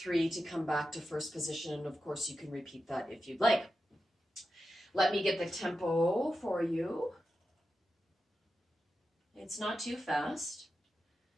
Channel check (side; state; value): both; normal; correlation 0.90